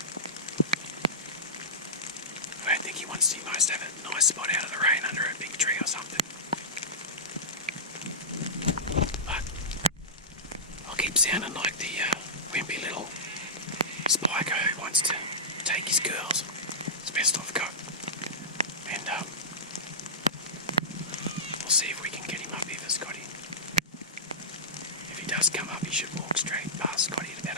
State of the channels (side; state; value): both; normal; correlation -0.17